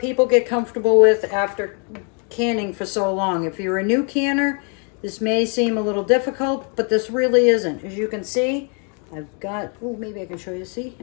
people get comfortable with after canning for so long. If you're a new canner, this may seem a little difficult, but this really isn't. As you can see, I've got, maybe I can show you. See,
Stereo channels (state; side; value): quieter; right; 38.5 dB